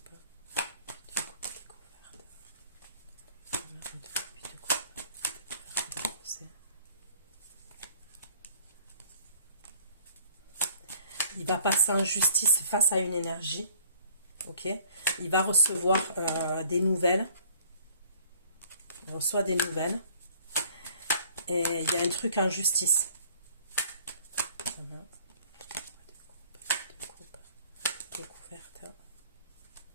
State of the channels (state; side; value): inverted; both; correlation -0.55